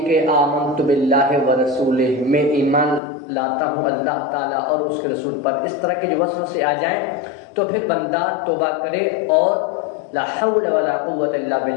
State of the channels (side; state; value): right; drops out; at 3.0 s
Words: کہ آمنت باللہ ورسولہ، میں ایمان لاتا ہوں اللہ تعالیٰ اور اس کے رسول پر، اس طرح کے جو وسوسے آ جائیں تو پھر بندہ توبہ کرے اور لا حول ولا قوت الا